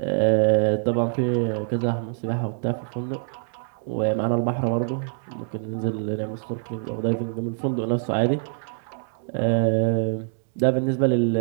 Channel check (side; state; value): left; silent; 62 dB below the other